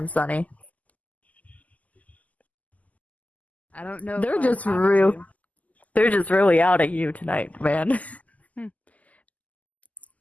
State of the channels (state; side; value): late; right; 0.075 ms